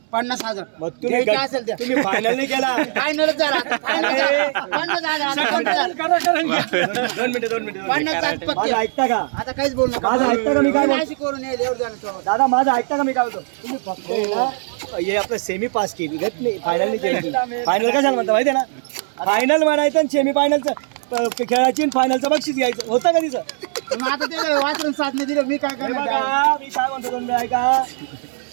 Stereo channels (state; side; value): silent; left; digital silence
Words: 50,000. मग तुम्ही द्यायचं असेल द्या. तुम्ही फायनल नाही केला. फायनलच झाला. फायनल झाला. 50,000. आता 50,000. 2 मिनिटं 50,000 पक्के. माझं ऐकता का? आता काहीच बोल नका. माझं ऐकता का मी काय बोलतो? नाशिक करून येईल एवढं झालं तेव्हा. दादा माझं ऐकता का मी काय बोलतो? तुम्ही फक्त आहे ना, हे आपलं सेमी पास केली घेत नाही फायनल नाही केली. फायनल कशाला म्हणता माहिती आहे ना? फायनल म्हणायचं आणि सेमी फायनलचं खेळाची फायनलचं बक्षीस घ्यायचं होतं का तिचं? मग आता ते वाचून साधने दिले मी काय हे करणार. बघा, मी काय म्हणतो तुम्ही ऐका.